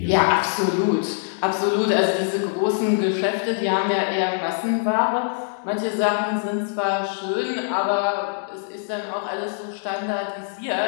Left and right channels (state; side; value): silent; right; digital silence